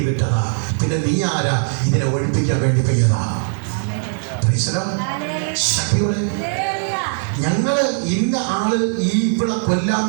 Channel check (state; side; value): silent; left; digital silence